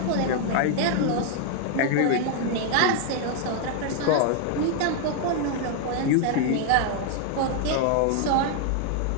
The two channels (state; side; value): different; both; correlation 0.00